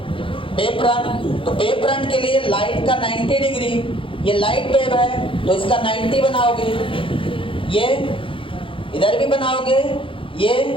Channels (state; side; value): late; right; 0.25 ms